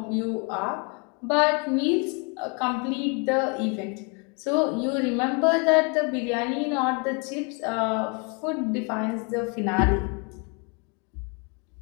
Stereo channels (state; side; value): quieter; right; 34.1 dB